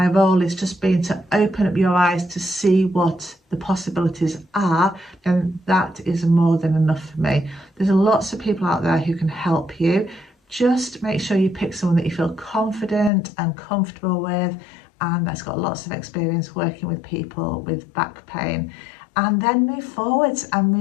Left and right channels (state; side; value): drops out; right; at 13.1 s